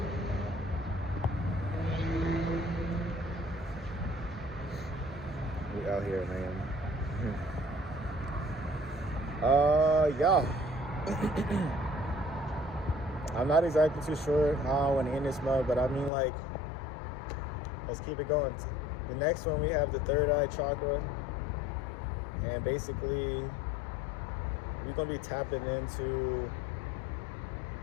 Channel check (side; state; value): right; drops out; at 16.1 s